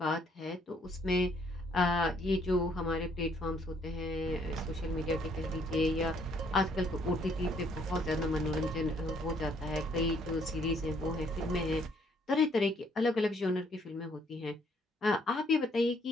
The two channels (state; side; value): normal; both; correlation 0.66